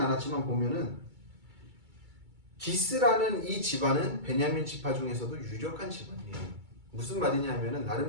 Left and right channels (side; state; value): left; late; 2.3 ms